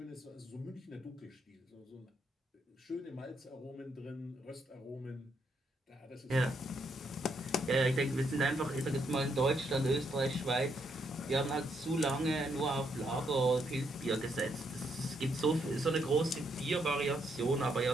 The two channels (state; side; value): normal; both; correlation 0.75